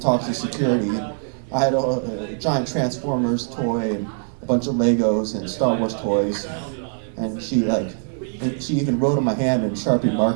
to security. I had a giant Transformers toy and a bunch of Legos and Star Wars toys, and she even wrote on my hand in Sharpie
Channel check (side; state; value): left; silent; digital silence